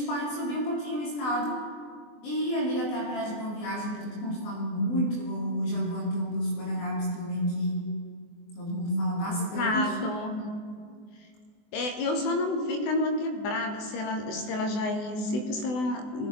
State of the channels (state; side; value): late; right; 24 ms